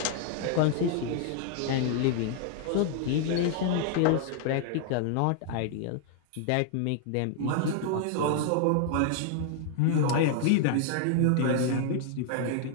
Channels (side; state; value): both; different; correlation 0.00